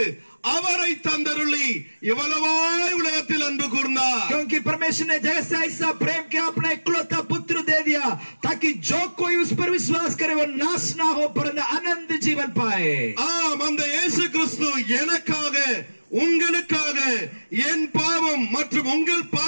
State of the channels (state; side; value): inverted; both; correlation -1.00